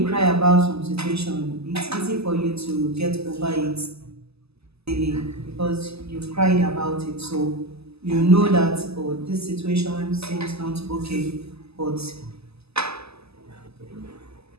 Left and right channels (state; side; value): late; left; 0.79 ms